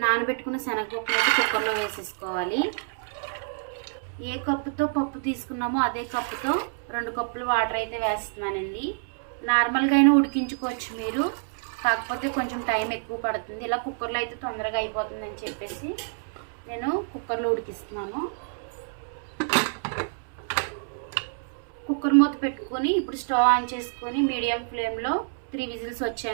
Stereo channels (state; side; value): silent; left; 60 dB below the other